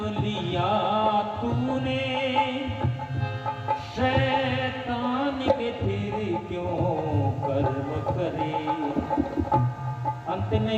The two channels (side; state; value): both; identical; correlation 1.00